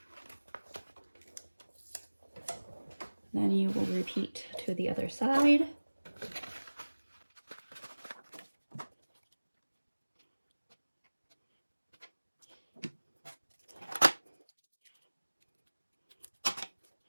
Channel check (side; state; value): both; inverted; correlation -1.00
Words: Then you will repeat to the other side.